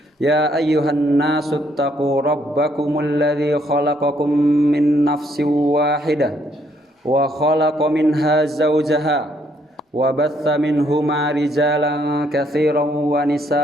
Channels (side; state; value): both; normal; correlation 0.70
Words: Ya ayyuhan nasu taqu rabbakumul ladzi khalaqakum min nafsin wahidah wa khalaqa minha zawjaha wa batha minhuma rijalan katsiran wa